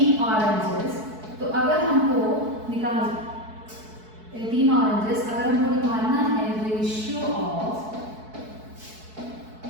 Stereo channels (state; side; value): late; left; 4.6 ms